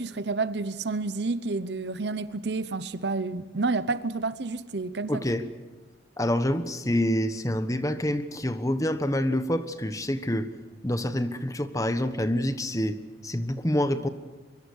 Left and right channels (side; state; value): both; normal; correlation 0.66